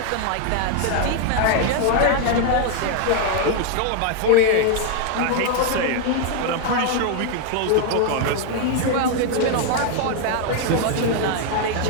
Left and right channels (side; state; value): both; different; correlation 0.01